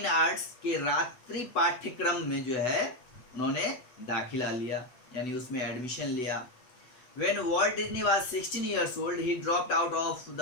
Arts के रात्रि पाठ्यक्रम में जो है उन्होंने दाखिला लिया, यानी उसमें एडमिशन लिया। When Walt Disney was 16 years old, he dropped out of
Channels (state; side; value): late; right; 8.0 ms